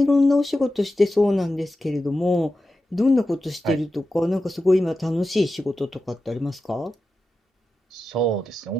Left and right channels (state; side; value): normal; both; correlation 0.92